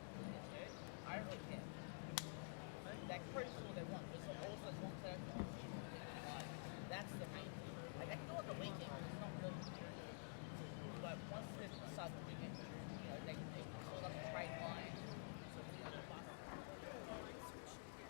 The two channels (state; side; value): silent; right; digital silence